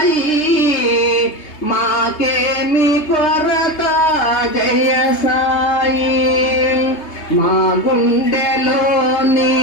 మాకేమి కొరత జయ సాయి. మా గుండెలోని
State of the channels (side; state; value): right; late; 3.3 ms